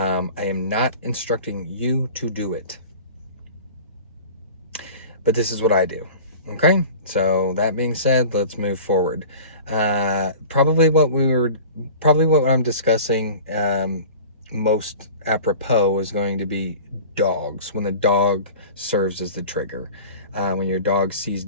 am not instructing you to do it, but this is what I do. Okay, so that being said, let's move forward. Probably what I'm discussing most apropos is going to be dogs, when the dog serves as the trigger, when your dog sees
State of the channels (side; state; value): both; inverted; correlation -0.40